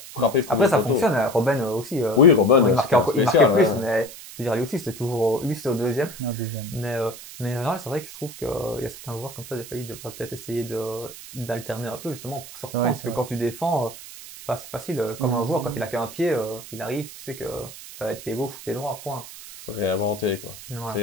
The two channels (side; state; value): right; noise; hiss, 14 dB below the sound